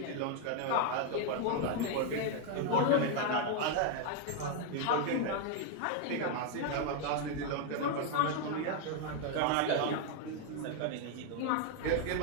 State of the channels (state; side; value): different; both; correlation 0.00